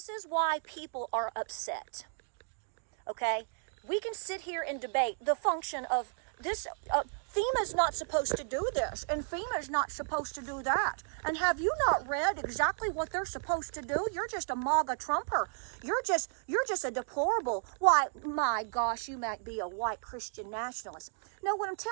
is why people are upset, okay? We can sit here and debate the function of this. FEMA's not supposed to do this, and FEMA's not supposed to do that. And have you not read exactly what they're supposed to do? You're just a MAGA Trumper. You're just a deplorable. Why, my gosh, you might be a white Christian nationalist. No, what I'm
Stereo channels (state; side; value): silent; left; 55 dB below the other